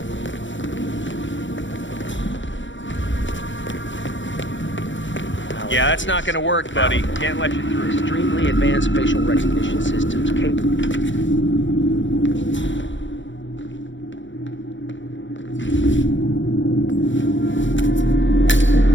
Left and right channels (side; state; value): right; late; 0.55 ms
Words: Yeah, that's not gonna work, buddy. Can't let you through. Extremely advanced facial recognition systems capable.